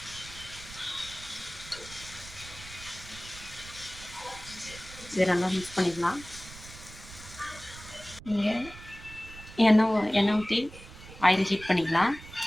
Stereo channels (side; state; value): right; noise; rumble, 16 dB below the sound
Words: இதை நல்லா மிக்ஸ் பண்ணிக்கலாம். இங்கே எண்ணெய் ஊற்றி ஆயில் ஹீட் பண்ணிக்கலாம்.